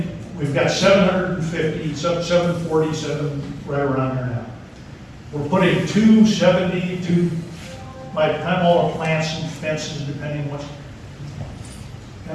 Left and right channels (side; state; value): both; identical; correlation 1.00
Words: we've got 750, 747, right around there now. We're putting 272, by the time all the plants and fences, depending what,